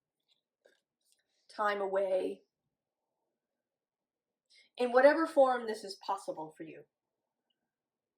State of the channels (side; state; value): both; identical; correlation 1.00